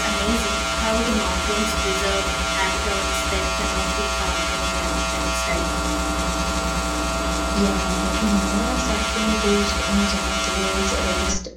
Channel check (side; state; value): both; identical; correlation 1.00